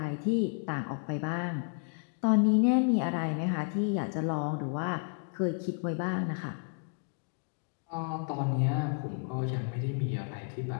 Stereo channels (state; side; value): silent; right; 57 dB below the other